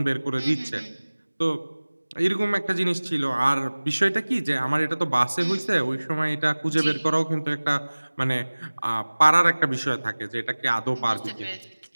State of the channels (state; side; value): inverted; both; correlation -1.00